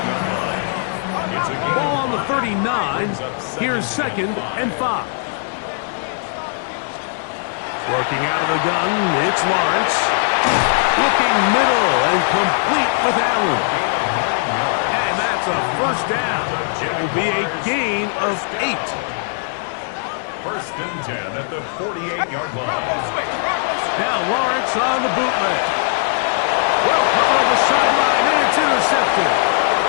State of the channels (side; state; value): right; silent; 61 dB below the other